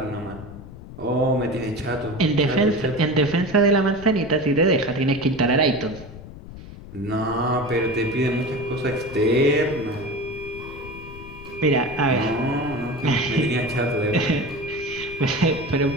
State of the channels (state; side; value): noise; left; rumble, 15 dB below the sound